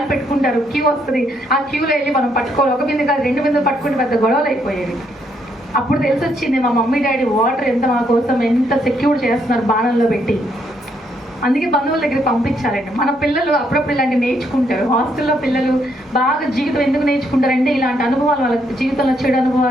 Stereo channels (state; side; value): normal; both; correlation 0.73